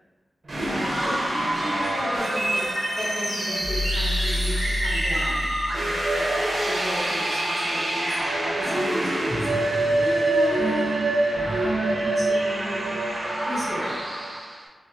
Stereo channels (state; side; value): normal; both; correlation 0.90